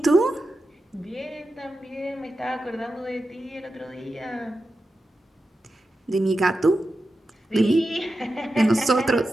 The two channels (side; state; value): both; normal; correlation 0.90